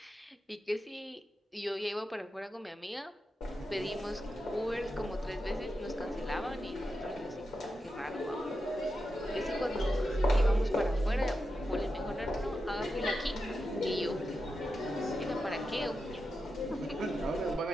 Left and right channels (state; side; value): normal; both; correlation 0.89